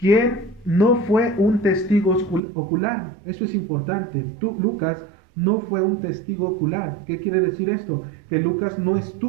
no fue un testigo ocular. Eso es importante. Lucas no fue un testigo ocular. ¿Qué quiere decir esto? Que Lucas no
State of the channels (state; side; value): drops out; left; at 2.4 s